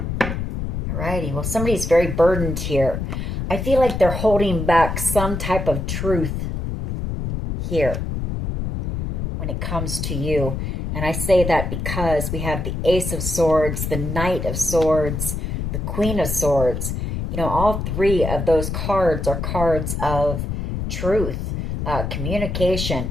Alrighty, well, somebody's very burdened here. I feel like they're holding back some type of truth here when it comes to you. And I say that because we have the Ace of Swords, the Knight of Swords, the Queen of Swords. You know, all three of those cards are cards of truth, communication.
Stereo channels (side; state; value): left; noise; rumble, 3 dB below the sound